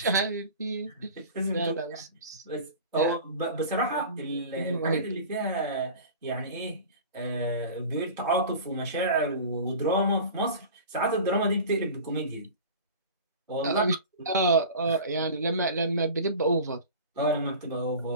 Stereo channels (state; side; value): inverted; both; correlation -0.37